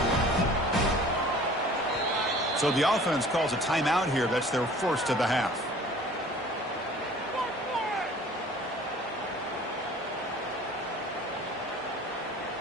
So the offense calls a timeout here. That's their first of the half.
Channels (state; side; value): normal; both; correlation 0.48